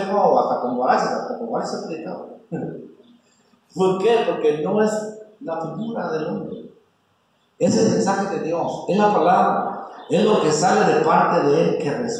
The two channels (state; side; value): identical; both; correlation 1.00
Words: hasta con guaraches he predicado. ¿Por qué? Porque no es la figura del hombre. Es el mensaje de Dios, es la palabra, es lo que sale de parte de Él que